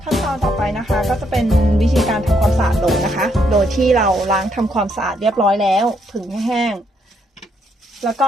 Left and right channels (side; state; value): both; normal; correlation 0.74